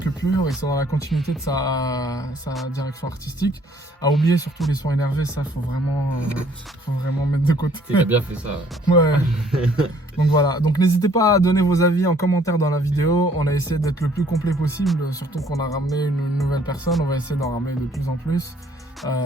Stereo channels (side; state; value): both; normal; correlation 0.61